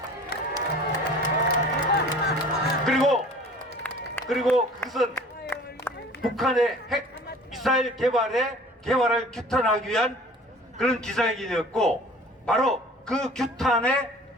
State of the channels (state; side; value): normal; both; correlation 0.46